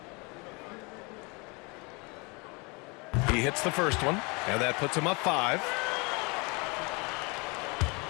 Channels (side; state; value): right; quieter; 29.0 dB